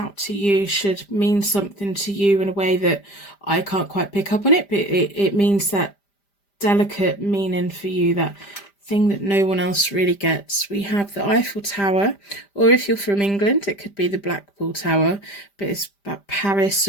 to you, should mean something to you in a way that I can't quite pick up on it, but it means that delicate meaning for you, that thing that no one else really gets. We have the Eiffel Tower, or if you're from England, it could be the Blackpool Tower, but it's about Paris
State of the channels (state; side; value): late; right; 5.0 ms